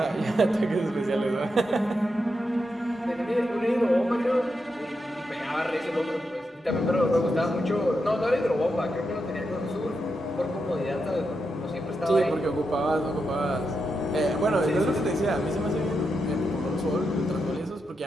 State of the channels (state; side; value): normal; both; correlation 0.86